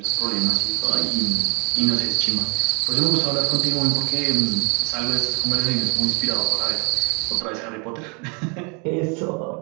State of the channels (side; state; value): left; quieter; 33.8 dB